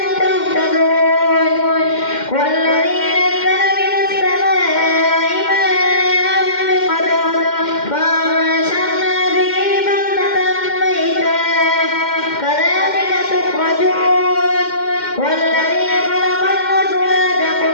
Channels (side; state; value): right; late; 2.1 ms